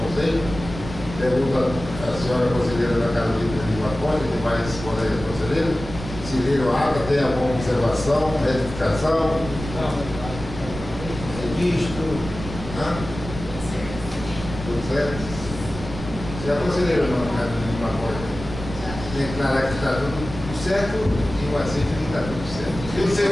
Pergunta a senhora conselheira Ana Carolina de Lima Costa, que vai responder a conselheira. Se viram a ata, tem alguma observação, retificação? Não. Registro? Tudo certo? Se a conselheira Ana Carolina de Lima Costa declarar que está tudo certo, e o aceito que está tudo certo. E o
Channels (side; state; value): right; noise; rumble, 10 dB below the sound